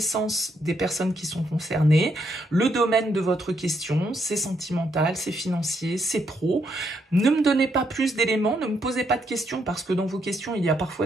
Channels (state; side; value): normal; both; correlation 0.76